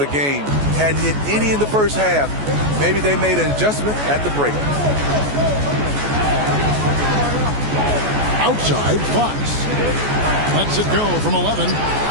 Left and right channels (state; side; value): late; left; 14 ms